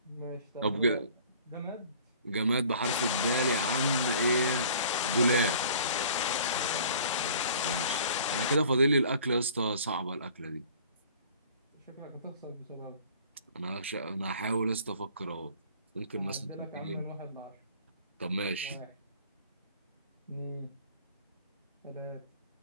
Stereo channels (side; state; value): both; inverted; correlation -0.50